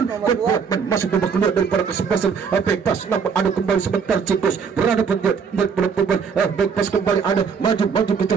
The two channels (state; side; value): quieter; left; 6.2 dB